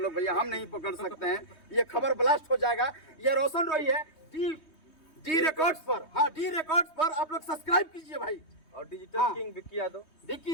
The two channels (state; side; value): late; right; 3.2 ms